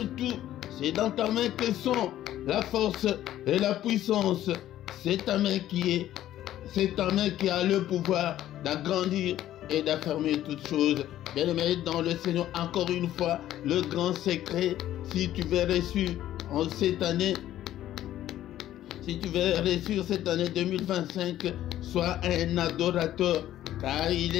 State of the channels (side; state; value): right; quieter; 12.9 dB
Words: tout. C'est dans ta main que sont la force et la puissance. C'est ta main qui a le pouvoir d'agrandir et d'affermir toutes choses. Bien-aimés dans le Seigneur, encore une fois, le grand secret, si tu veux réussir en cette année, si tu veux réussir cette année 2025, sois un adorateur, car il